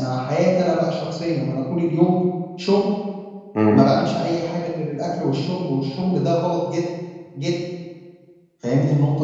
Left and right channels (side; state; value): both; identical; correlation 1.00